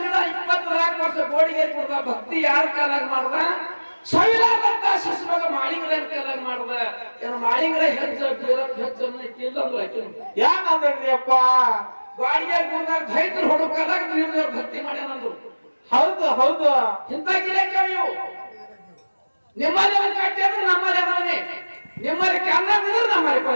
ವರ್ಷ ಗೋಡಿಗೇರಿ ಕೊಡ್ದ. ಭಕ್ತಿ ಯಾರ ಕಾಲಾಗ ಮಾಡ್ದ? ಸಾವಿರಾರಂತ ಶಿಷ್ಯವಾಗ ಮಾಳಿಂಗರಾಯನ ಕಾಲಾಗ ಮಾಡ್ದ. ಏನು ಮಾಳಿಂಗರಾಯ ಹೆಚ್ಚ ಬೀರಪ್ಪ ಹೆಚ್ಚ ಕಿಲ್ಲಂದ್ರು ಆಕಿ ಯಾನಂದ್ರಿಯಪ್ಪ? ಬಾಡಿಗೆ ಗುಡ್ದಾಗ ದೈತ್ರ ಹೊಡು ಕಾಲಾಗ ನೀರು ಭಕ್ತಿ ಮಾಡ್ಯಾನಂದ್ರು. ಹೌದು ಹೌದು ಇಂಥ ಗಿರಾಕಿ ಇವು. ನಿಮ್ಮಲ್ಲಿ ಒಂದು ಕಟ್ಟಿ ಅಂದ್ರೆ ನಮ್ಮಲ್ಲಿ ಅದವನೇ. ನಿಮ್ಮಲ್ಲಿ ಕನ್ನ ಬಿದ್ರೆ ನಮ್ಮಲ್ಲಿ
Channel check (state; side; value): inverted; both; correlation -1.00